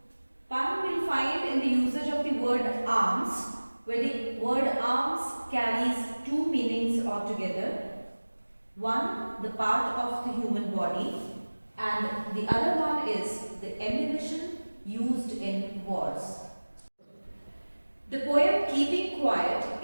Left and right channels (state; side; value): inverted; both; correlation -1.00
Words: Pun we'll find in the usage of the word arms, where the word arms carries two meanings altogether. One, the part of the human body, and the other one is the ammunition used in wars. The poem Keeping Quiet